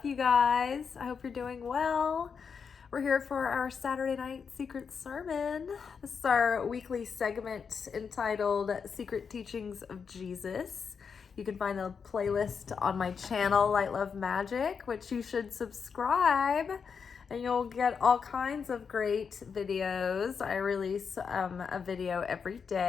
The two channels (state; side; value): quieter; right; 6.1 dB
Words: you guys? I hope you're doing well. We're here for our Saturday night secret sermon. This is our weekly segment entitled Secret Teachings of Jesus. You can find the playlist on my channel, Light Love Magic, which you should subscribe, and you'll get all kinds of great videos. I release a video every